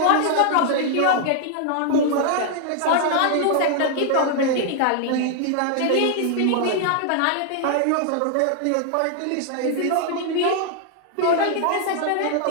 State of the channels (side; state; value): both; different; correlation 0.00